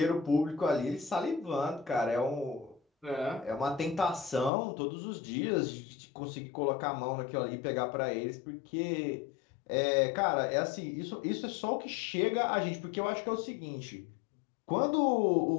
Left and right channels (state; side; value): drops out; right; at 4.5 s